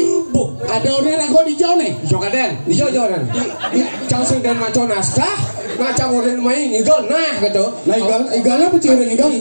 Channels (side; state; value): both; inverted; correlation -1.00